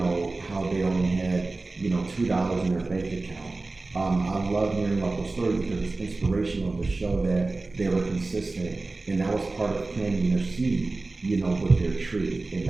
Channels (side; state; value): left; quieter; 3.3 dB